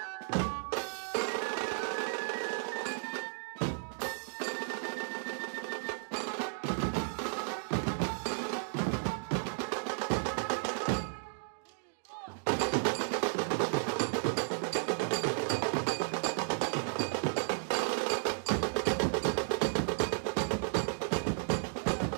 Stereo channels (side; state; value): left; silent; digital silence